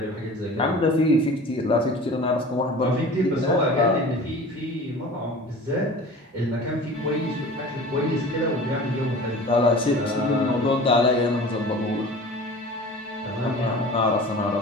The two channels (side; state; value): both; normal; correlation 0.40